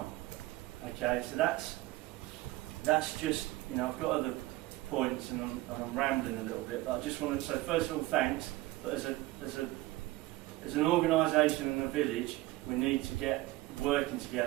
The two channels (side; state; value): left; quieter; 18.4 dB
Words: Okay, so that's just, I've got other points and I'm rambling a little bit, but I just wanted to say first of all thanks. But as an organisation in the village, we need to get working